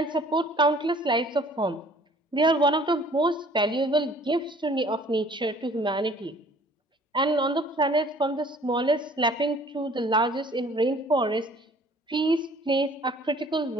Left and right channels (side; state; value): both; normal; correlation 0.53